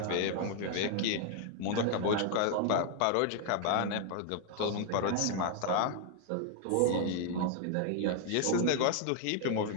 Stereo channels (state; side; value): different; both; correlation 0.00